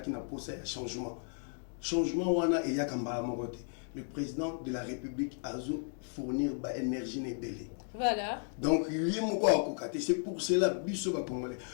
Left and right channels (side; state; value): right; silent; 55 dB below the other